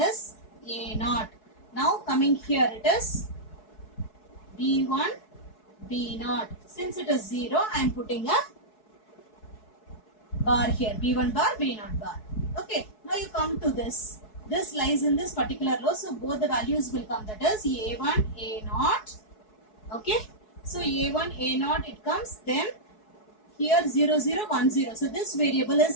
a0. Now coming here it is b1 b0. Since it is 0, I am putting a bar here, b1 bar b0 bar. Okay, now you come to this. This lies in this particular row, so both the values will come. That is a1 a0. Okay, so a1 a0 it comes, then here 0 0 1 0. So this variable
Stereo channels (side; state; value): right; late; 4.7 ms